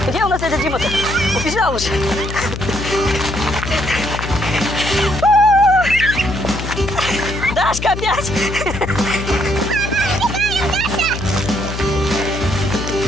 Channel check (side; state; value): left; noise; hum, 6 dB below the sound